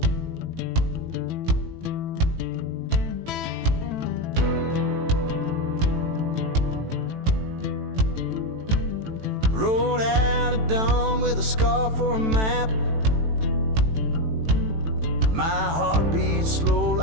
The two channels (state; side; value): late; left; 18 ms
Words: Rode out at dawn with a scar for a map. My heart beats slow